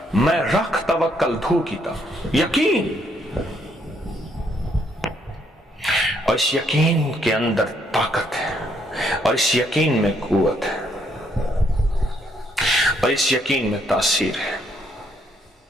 میں رکھ توکل دھو کیتا، یقین، اور اس یقین کے اندر طاقت ہے، اور اس یقین میں قوت ہے، اور اس یقین میں تاثیر ہے،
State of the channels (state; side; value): normal; both; correlation 0.71